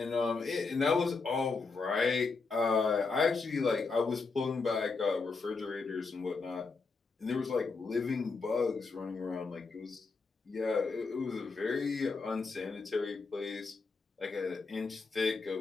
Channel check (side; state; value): right; quieter; 4.3 dB